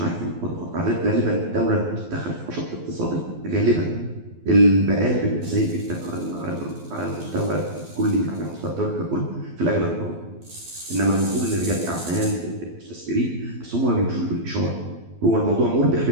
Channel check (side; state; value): left; late; 12 ms